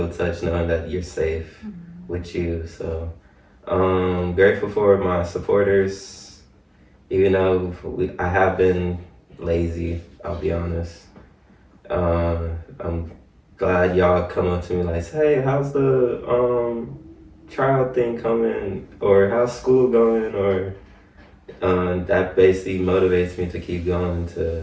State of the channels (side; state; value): both; identical; correlation 1.00